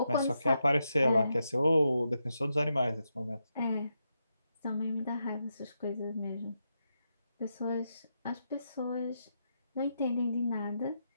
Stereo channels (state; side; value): inverted; both; correlation -0.84